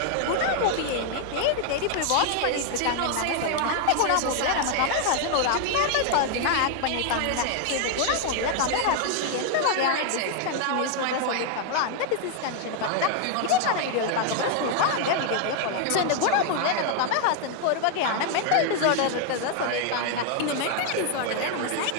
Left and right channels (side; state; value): both; different; correlation 0.00